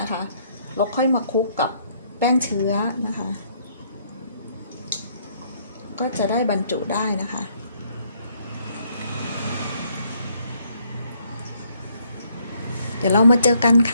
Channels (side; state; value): both; inverted; correlation -0.68